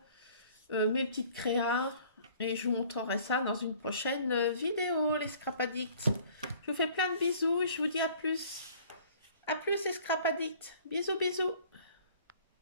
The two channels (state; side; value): inverted; both; correlation -0.53